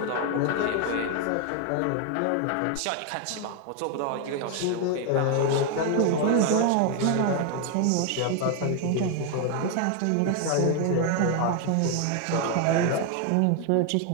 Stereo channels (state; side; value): different; both; correlation 0.01